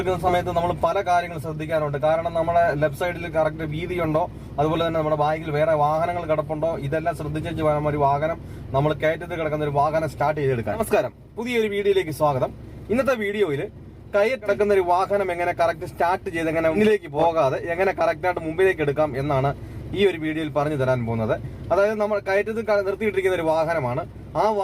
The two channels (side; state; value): both; identical; correlation 1.00